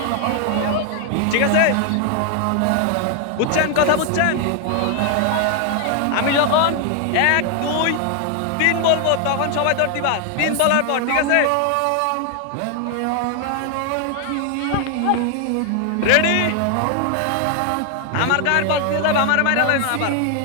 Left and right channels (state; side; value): different; both; correlation 0.00